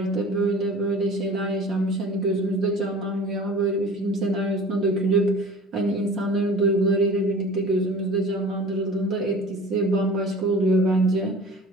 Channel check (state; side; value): normal; both; correlation 0.42